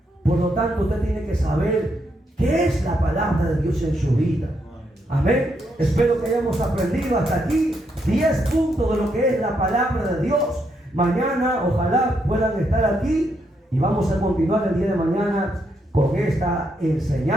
Por lo tanto, usted tiene que saber qué es la palabra de Dios en su vida. Amén. Espero que hayamos aprendido hasta aquí 10 puntos de lo que es la palabra de Dios. Mañana ojalá puedan estar aquí y vamos a continuar el día de mañana con esta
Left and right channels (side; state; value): both; normal; correlation 0.78